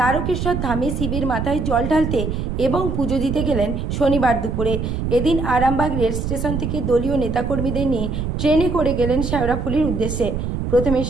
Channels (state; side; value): noise; right; rumble, 3 dB below the sound